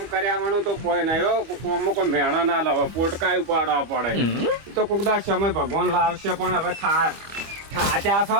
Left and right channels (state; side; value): late; left; 25 ms